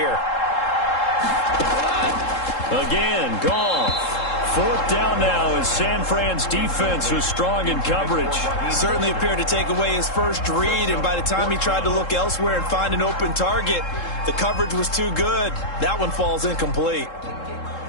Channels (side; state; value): right; late; 3.7 ms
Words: Again, Goff. Fourth down now as San Fran's defense was strong in coverage. Certainly appeared to take away his first read, and by the time he tried to look elsewhere and find an open target, the coverage was too good. That one falls incomplete.